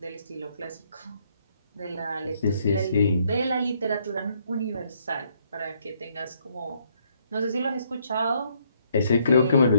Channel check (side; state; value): both; inverted; correlation -0.70